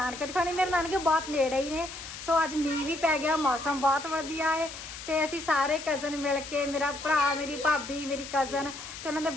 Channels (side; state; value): left; noise; hiss, 11 dB below the sound